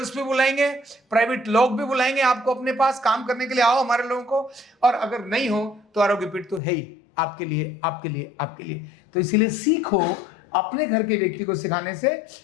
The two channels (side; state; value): right; drops out; at 6.6 s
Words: भी बुलाएंगे, प्राइवेट लोग भी बुलाएंगे आपको अपने पास काम करने के लिए, आओ हमारे लोगों को। और अगर नहीं हो तो आरोग्य पीठ तो है ही आपके लिए, आपके लिए, आपके लिए। तो इसीलिए सीखो, अपने घर के व्यक्ति को सिखाने से